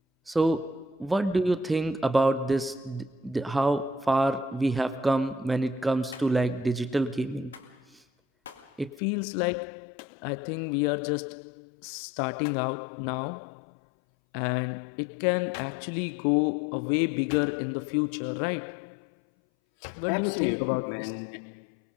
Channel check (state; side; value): drops out; right; at 9.0 s